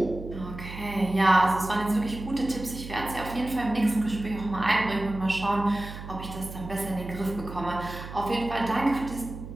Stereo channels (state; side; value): noise; right; hum, 11 dB below the sound